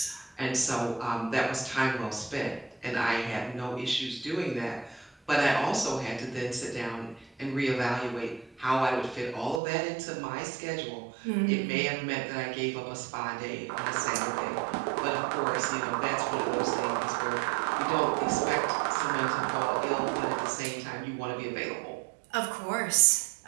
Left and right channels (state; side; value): drops out; left; at 9.6 s